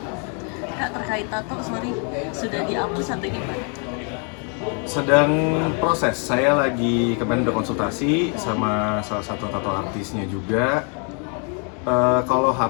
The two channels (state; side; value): quieter; right; 38.6 dB